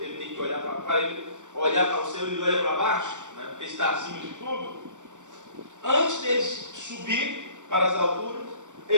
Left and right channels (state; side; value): late; left; 0.85 ms